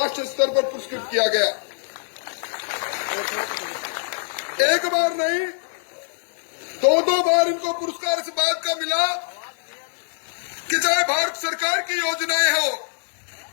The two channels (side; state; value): right; silent; 59 dB below the other